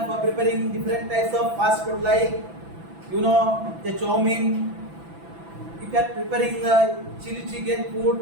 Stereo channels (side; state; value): left; late; 6.0 ms